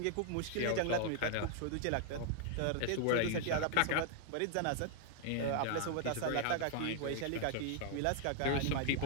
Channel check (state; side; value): different; both; correlation 0.00